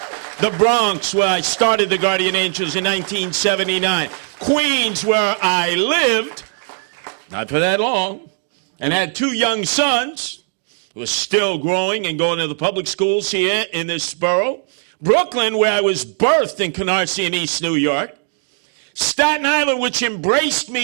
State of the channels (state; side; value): silent; left; 67 dB below the other